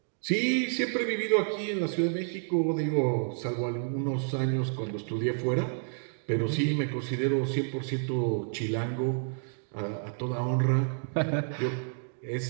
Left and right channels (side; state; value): left; silent; digital silence